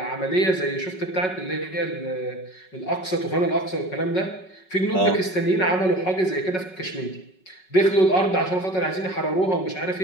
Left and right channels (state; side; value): late; right; 5.4 ms